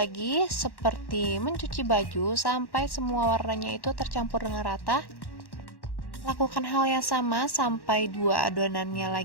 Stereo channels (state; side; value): late; right; 1.1 ms